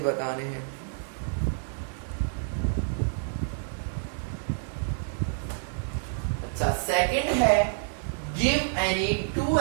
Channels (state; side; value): silent; left; 59 dB below the other